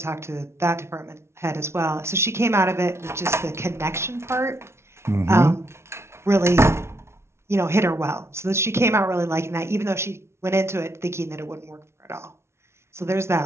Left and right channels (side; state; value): left; late; 0.13 ms